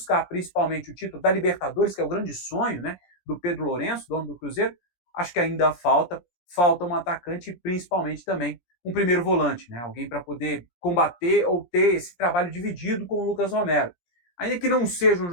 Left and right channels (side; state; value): right; late; 17 ms